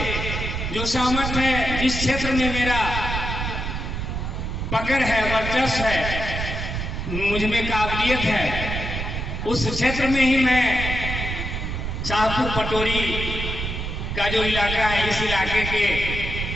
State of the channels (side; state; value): right; noise; rumble, 4 dB below the sound